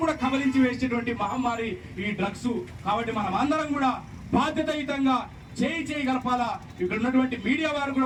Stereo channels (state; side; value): identical; both; correlation 1.00